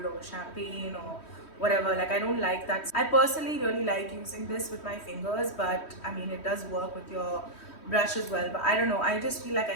or champagne or whatever. Like, I don't like that. I personally really like using this with my fingers, but I mean, it does work with your brush as well. But I don't know, I just feel like I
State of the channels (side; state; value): right; late; 3.1 ms